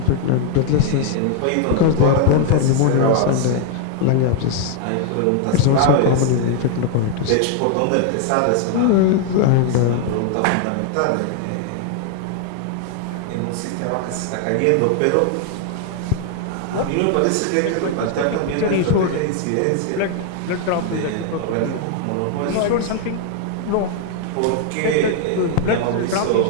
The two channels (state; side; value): different; both; correlation 0.00